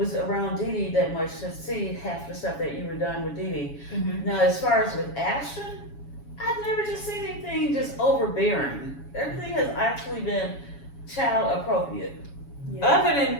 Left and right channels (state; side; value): late; right; 7.1 ms